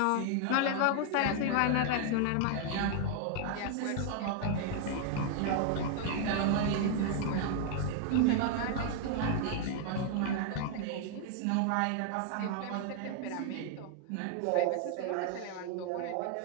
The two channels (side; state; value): both; different; correlation 0.00